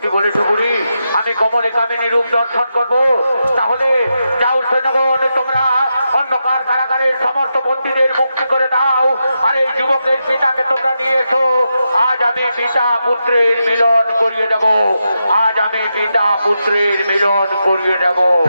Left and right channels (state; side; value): inverted; both; correlation -0.86